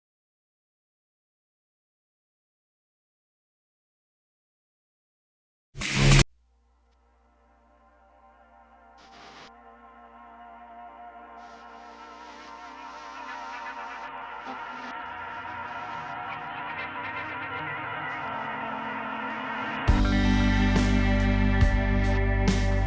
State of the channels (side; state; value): both; identical; correlation 1.00